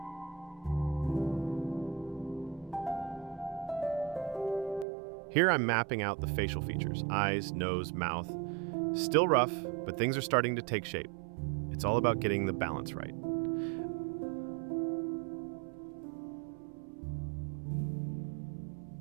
Here I'm mapping out the facial features, eyes, nose, mouth. Still rough, but things are starting to take shape. It's all about getting the balance right.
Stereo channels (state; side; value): drops out; left; at 4.9 s